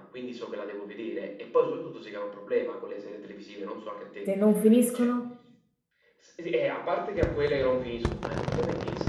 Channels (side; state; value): both; identical; correlation 1.00